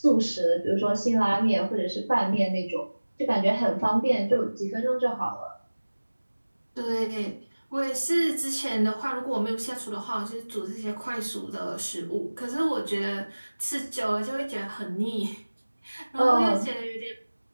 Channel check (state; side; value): inverted; both; correlation -1.00